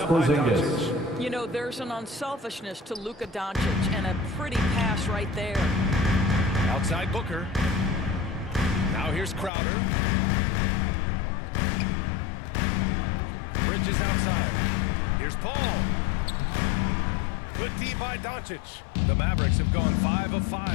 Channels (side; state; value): right; drops out; at 9.5 s